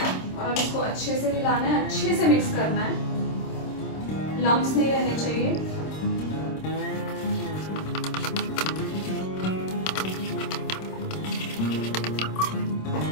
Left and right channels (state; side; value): late; right; 26 ms